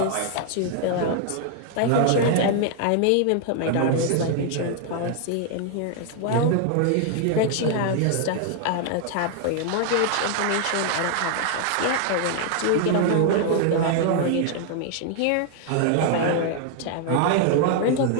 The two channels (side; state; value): both; different; correlation 0.00